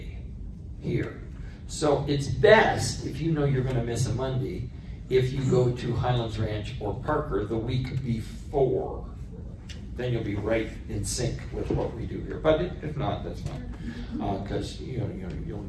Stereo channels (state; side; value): identical; both; correlation 1.00